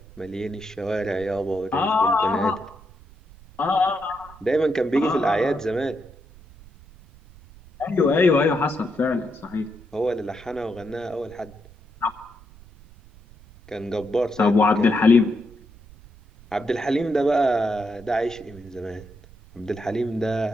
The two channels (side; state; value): right; noise; rumble, 22 dB below the sound